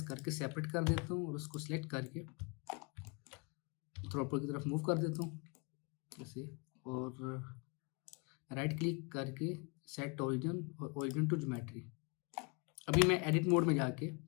करके सेपरेट कर देता हूँ और उसको सिलेक्ट करके थोड़ा ऊपर की तरफ मूव कर देता हूँ जैसे, और राइट क्लिक करके सेट ओरिजिन और ओरिजिन टू ज्योमेट्री। अभी मैं एडिट मोड में जाके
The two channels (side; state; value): right; quieter; 31.2 dB